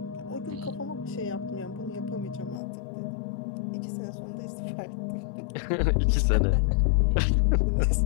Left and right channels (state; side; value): drops out; right; at 2.6 s